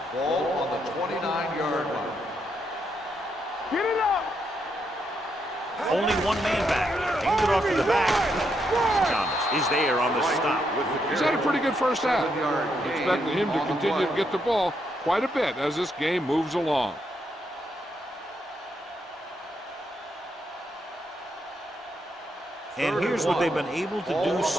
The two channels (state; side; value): normal; both; correlation 0.79